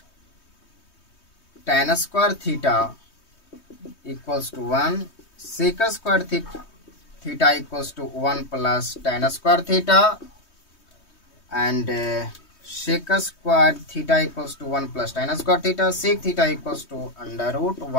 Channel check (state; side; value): late; right; 3.2 ms